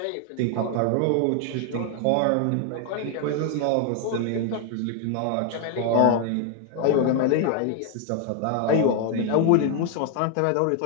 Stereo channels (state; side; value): different; both; correlation 0.00